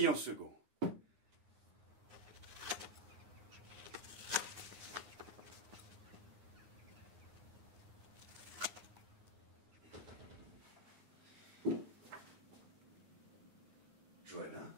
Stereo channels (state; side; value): late; left; 9.6 ms